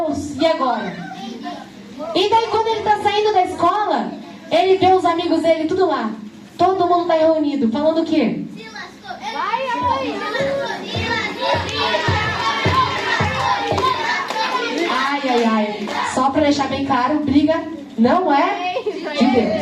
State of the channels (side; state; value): both; identical; correlation 1.00